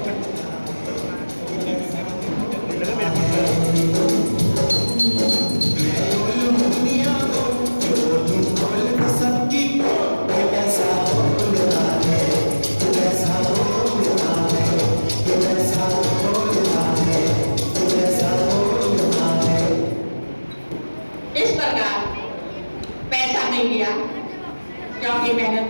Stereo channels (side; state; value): both; inverted; correlation -1.00